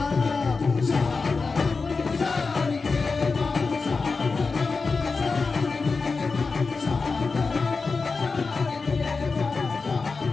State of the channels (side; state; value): right; quieter; 4.4 dB